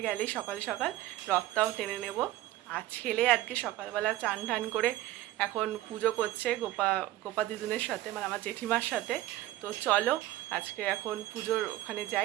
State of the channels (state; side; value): quieter; left; 15.3 dB